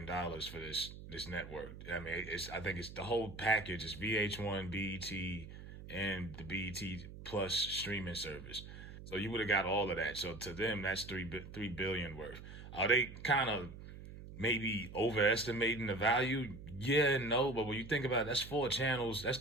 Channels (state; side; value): noise; right; hum, 13 dB below the sound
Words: for this network. I mean, I think it's the whole package. It's VH1, BET, and the BET Plus streaming service. So you would have got all of that. So to them, that's three billion worth. Are they kind of maybe overestimating the value? Yeah and no, but when you think about it, that's four channels, that's